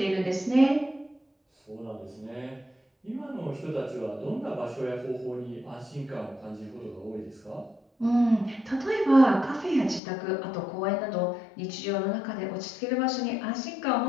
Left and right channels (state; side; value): drops out; right; at 10.0 s